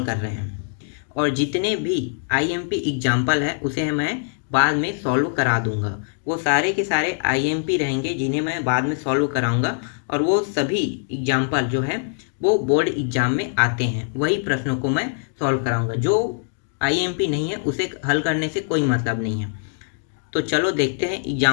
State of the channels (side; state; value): right; silent; digital silence